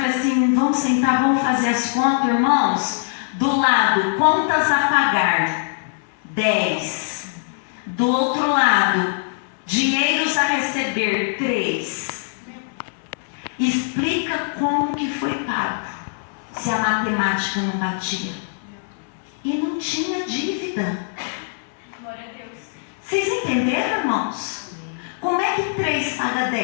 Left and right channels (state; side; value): silent; right; 64 dB below the other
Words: assim, vamos sentar, vamos fazer as contas, irmãos. Do lado, contas a pagar, 10. Do outro lado, dinheiros a receber, 3. Explica como que foi pago, se a matemática não batia. E não tinha dívida. Glória a Deus. Vocês entenderam, irmãos? Como é que 3 paga